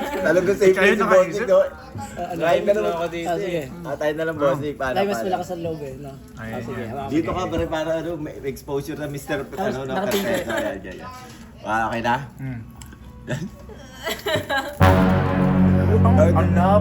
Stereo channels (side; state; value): both; identical; correlation 1.00